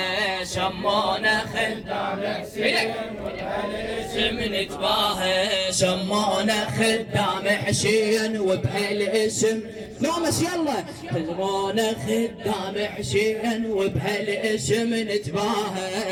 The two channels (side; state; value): both; identical; correlation 1.00